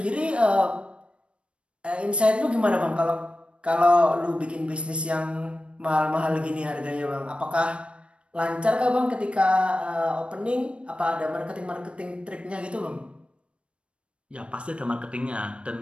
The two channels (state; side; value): late; left; 0.059 ms